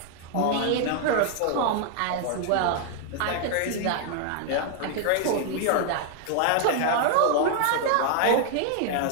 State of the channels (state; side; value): different; both; correlation 0.00